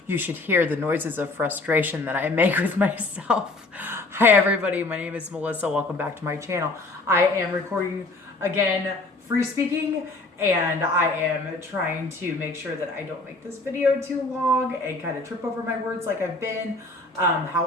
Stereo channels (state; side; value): quieter; right; 3.2 dB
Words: You should hear the noises of frustration that I make with myself. Hi everybody, my name is Melissa. Welcome back to my channel. I am recording again, free speaking, and I am trying to make sure that I don't make this video too long and kind of trip over my words like I've been.